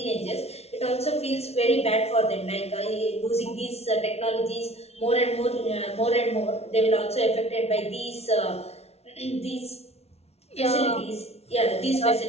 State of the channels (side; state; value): right; late; 0.31 ms